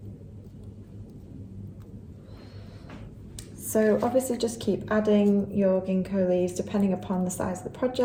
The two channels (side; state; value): both; identical; correlation 1.00